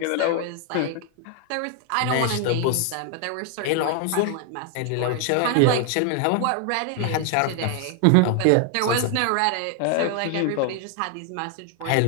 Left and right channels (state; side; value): different; both; correlation 0.00